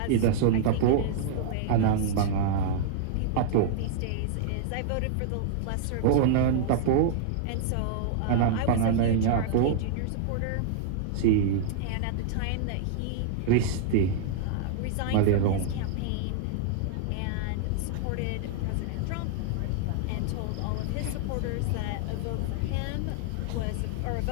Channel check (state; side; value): different; both; correlation -0.01